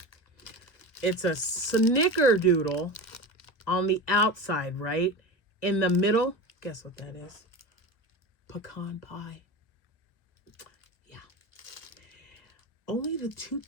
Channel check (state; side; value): late; right; 1.8 ms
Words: It's a snickerdoodle on the outside, right? In the middle, guess what that is? Pecan pie. Yeah. Only the 2